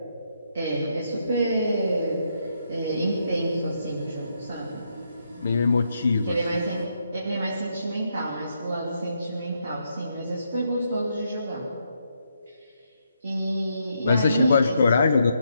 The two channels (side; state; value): both; inverted; correlation -0.79